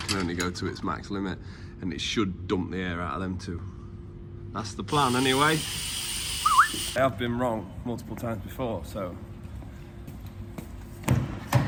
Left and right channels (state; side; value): identical; both; correlation 1.00